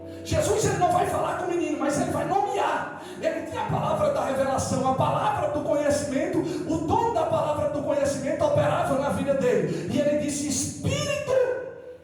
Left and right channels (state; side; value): identical; both; correlation 1.00